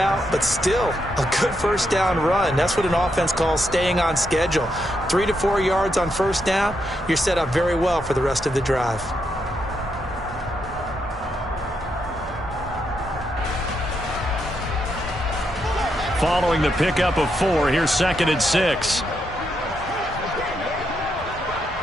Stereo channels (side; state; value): both; normal; correlation 0.80